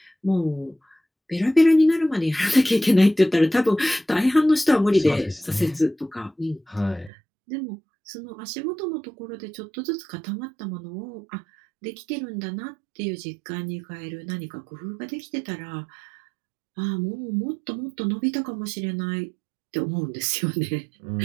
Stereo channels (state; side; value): drops out; left; at 7.1 s